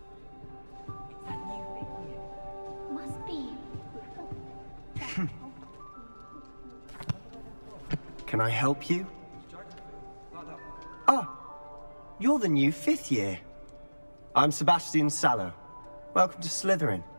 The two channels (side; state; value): both; inverted; correlation -1.00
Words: Must be. Can I help you? Oh, you're the new fifth year. I'm Sebastian Sallow. Welcome to Slytherin.